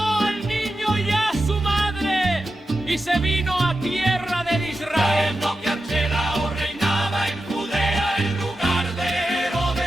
al niño y a su madre y se vino a tierra de Israel. Sabiendo que Archelao reinaba en Judea en lugar de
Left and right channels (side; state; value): both; normal; correlation 0.91